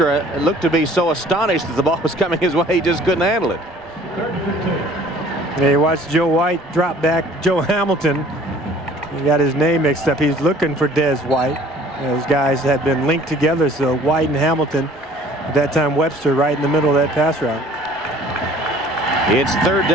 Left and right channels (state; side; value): normal; both; correlation 0.52